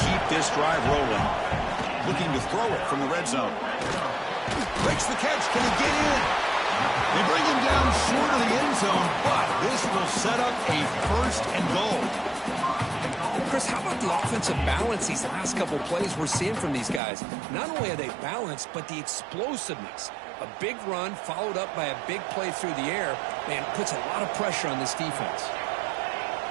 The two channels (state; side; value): drops out; left; at 17.0 s